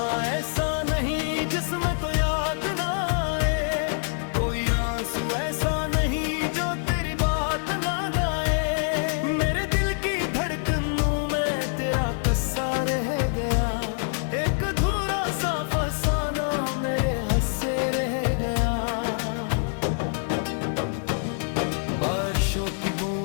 ऐसा नहीं जिसमें तो याद ना आए, कोई आंसू ऐसा नहीं जो तेरी बात ना गाए। मेरे दिल की धड़कनों में तेरा कस्सा रह गया, एक अधूरा सा फसाना मेरे हंसे रह गया। बारिशों की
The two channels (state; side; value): silent; right; 61 dB below the other